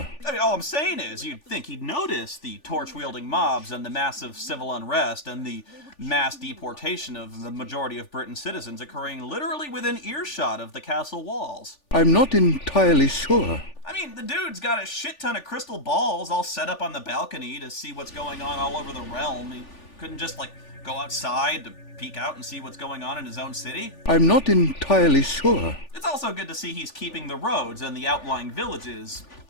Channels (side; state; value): right; late; 3.4 ms